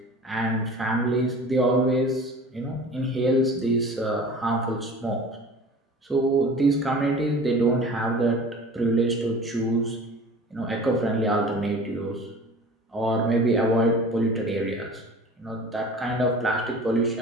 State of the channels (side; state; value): both; normal; correlation 0.41